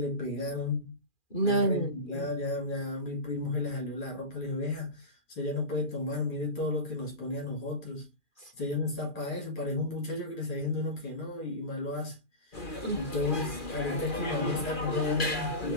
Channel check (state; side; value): late; right; 2.4 ms